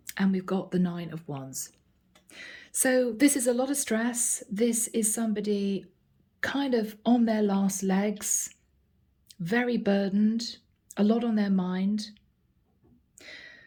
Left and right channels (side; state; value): both; identical; correlation 1.00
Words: and we've got the 9 of Wands. So this is a lot of stress. This is somebody kind of on their last legs, very burdened, a lot on their mind.